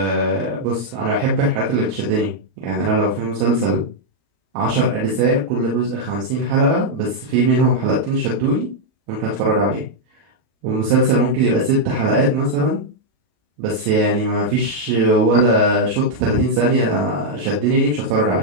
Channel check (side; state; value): left; late; 34 ms